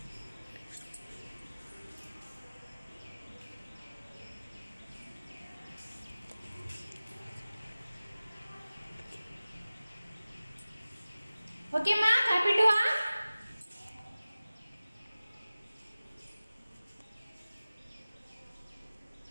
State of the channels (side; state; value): both; inverted; correlation -0.97